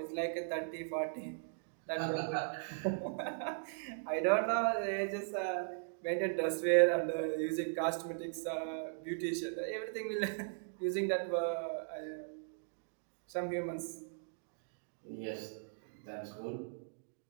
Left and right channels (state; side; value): silent; left; digital silence